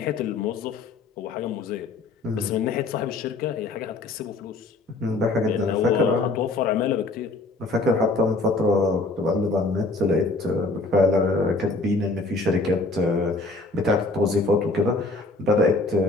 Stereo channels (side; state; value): right; quieter; 3.2 dB